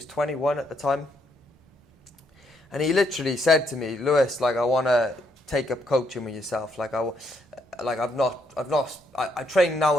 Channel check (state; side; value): normal; both; correlation 0.74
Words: 21 at the time. And he literally said to me, Lewis, like, I want to take up coaching with yourself. Like, I train